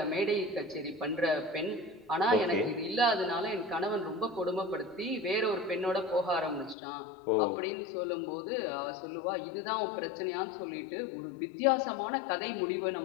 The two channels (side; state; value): right; drops out; at 6.8 s